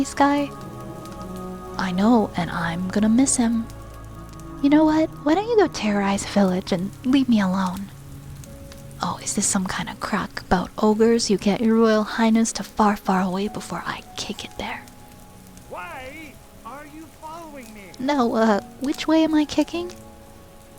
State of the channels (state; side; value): identical; both; correlation 1.00